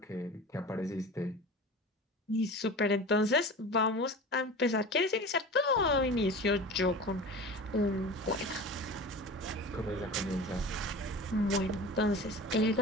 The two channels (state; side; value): normal; both; correlation 0.35